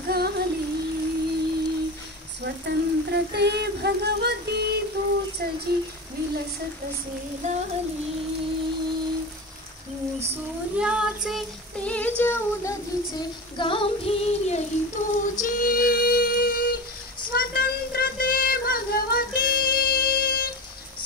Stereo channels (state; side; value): normal; both; correlation 0.26